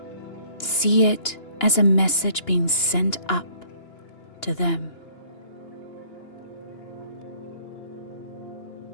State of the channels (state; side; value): late; right; 2.9 ms